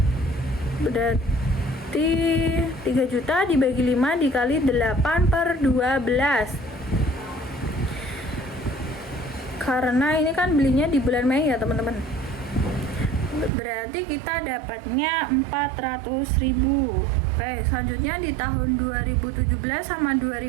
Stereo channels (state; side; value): drops out; left; at 13.5 s